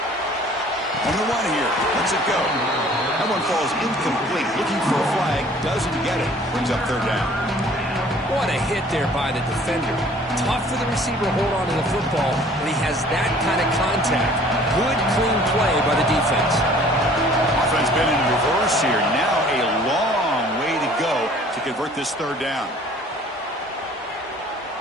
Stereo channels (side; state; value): both; normal; correlation 0.53